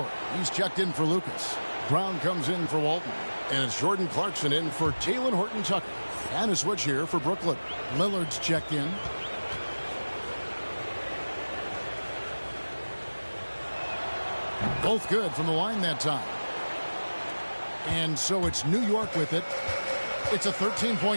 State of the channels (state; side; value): inverted; both; correlation -1.00